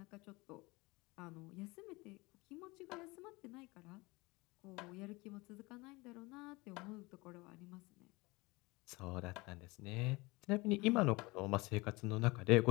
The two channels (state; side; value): quieter; right; 23.8 dB